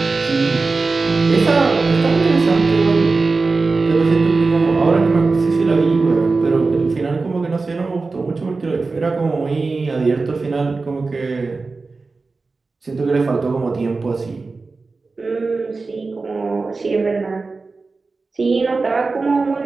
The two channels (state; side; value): quieter; left; 3.9 dB